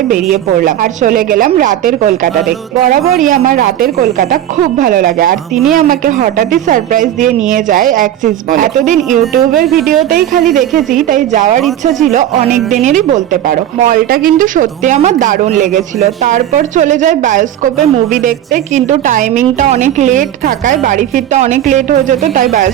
বেরিয়ে পড়লাম আর চলে গেলাম রাতের কলকাতা দেখতে। বরাবরই আমার রাতের কলকাতা খুব ভালো লাগে, আর তিনি আমাকে হঠাৎই সারপ্রাইজ দিয়ে নিয়ে যায় অ্যাক্সিস মলে। এতদিন ইউটিউবের ভিডিওতেই খালি দেখেছি, তাই যাওয়ার ইচ্ছা ছিল অনেক দিনেরই বলতে পারো। মলটা কিন্তু সত্যি আমার দারুণ লেগেছিল। তারপর চলে যায় বায়োস্কোপে মুভি দেখতে, কিন্তু টাইমিংটা অনেক লেট থাকায় বাড়ি ফিরতে অনেক লেট হয়ে যেত, তাই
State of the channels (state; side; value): quieter; left; 11.7 dB